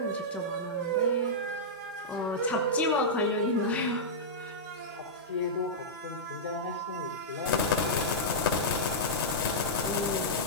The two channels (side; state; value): both; normal; correlation -0.11